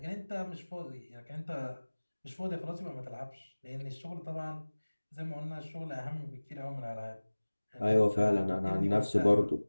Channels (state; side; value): inverted; both; correlation -1.00